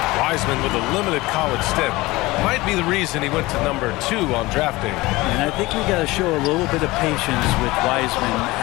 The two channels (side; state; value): right; quieter; 20.6 dB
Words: Wiseman with a limited college stint. Might be the reason he went to number 2 on draft day. And I think we got to show a little bit of patience with Wiseman